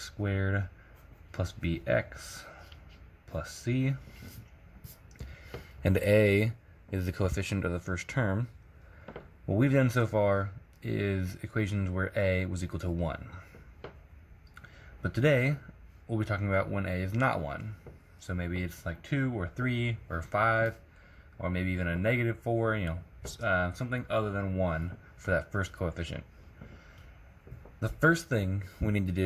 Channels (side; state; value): both; identical; correlation 1.00